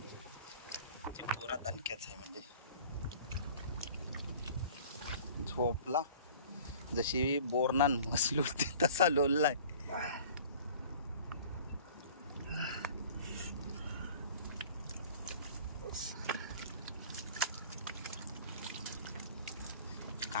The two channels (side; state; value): both; inverted; correlation -0.46